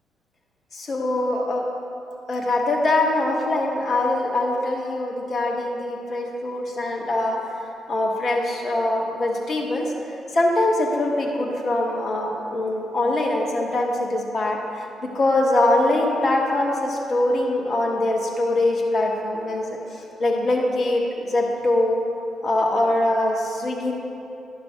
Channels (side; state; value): both; normal; correlation 0.85